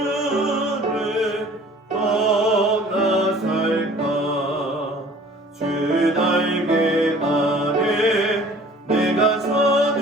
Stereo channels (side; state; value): both; normal; correlation 0.50